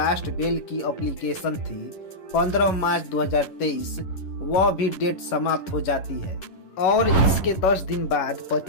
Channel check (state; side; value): late; right; 10 ms